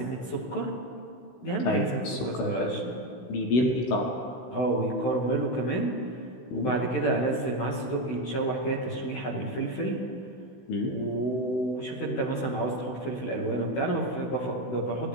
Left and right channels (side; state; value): right; late; 16 ms